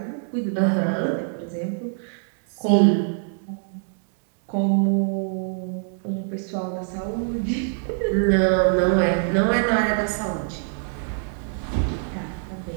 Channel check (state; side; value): silent; left; 62 dB below the other